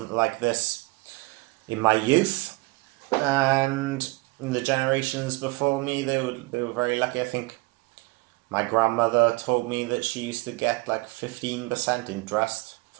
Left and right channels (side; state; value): left; quieter; 23.8 dB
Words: like this in my youth, and in the generations before me, they were very lucky. I think my grandmother told me that she used to get like 15% interest